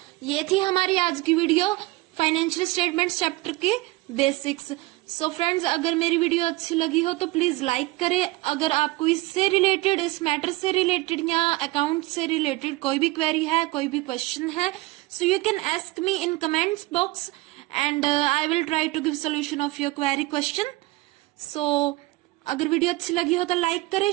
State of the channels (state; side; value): quieter; left; 20.4 dB